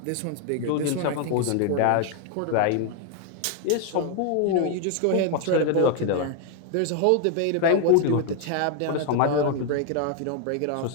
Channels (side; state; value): both; different; correlation 0.00